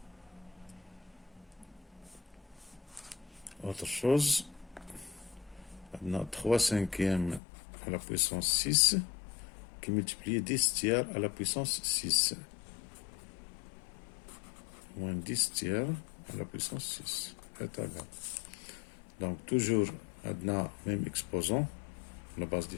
Autre chose, on a 3 cinquièmes à la puissance 6 qui multiplie 10 tiers à la puissance 6. Moins 10 tiers à la puissance 6 est égal. Donc toujours, on a même exposant, la base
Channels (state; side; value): drops out; right; at 7.4 s